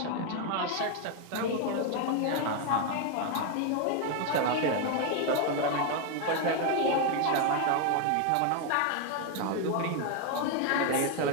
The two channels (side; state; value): both; different; correlation 0.01